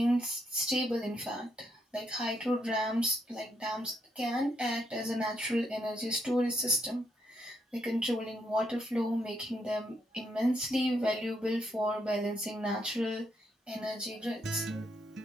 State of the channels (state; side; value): normal; both; correlation 0.76